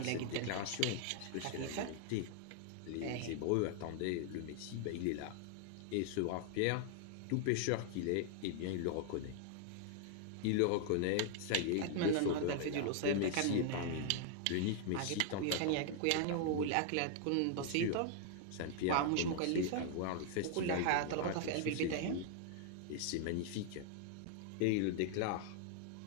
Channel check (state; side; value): different; both; correlation 0.00